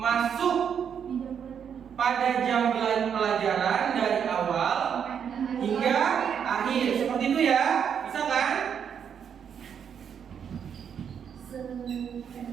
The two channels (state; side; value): quieter; left; 7.8 dB